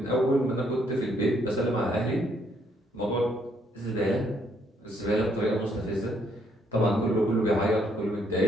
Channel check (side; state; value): both; normal; correlation 0.71